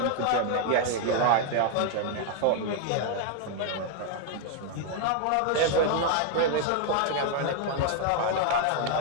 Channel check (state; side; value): different; both; correlation 0.00